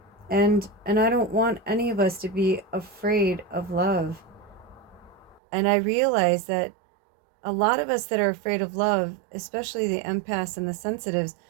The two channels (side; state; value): left; drops out; at 5.4 s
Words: And I don't want any of us to be afraid of love. And I realize that a lot of us that are afraid of love, especially the empaths and the sensitives,